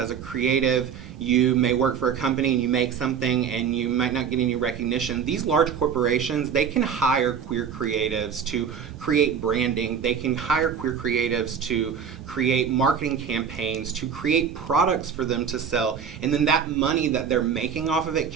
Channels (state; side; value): quieter; left; 7.2 dB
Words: a creative, you may work for a company and you make something and you might not get any recognition. These large corporations, they can hire queer creatives to create branding. They can hire queer creatives to create marketing campaigns, to create products for them to sell. And then that money that they're making off of it